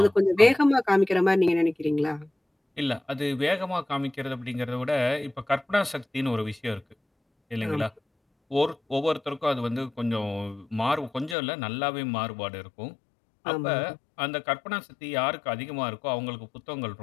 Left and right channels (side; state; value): right; drops out; at 11.4 s